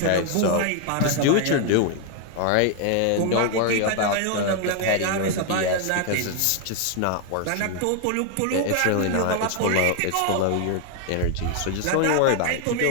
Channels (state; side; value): different; both; correlation 0.00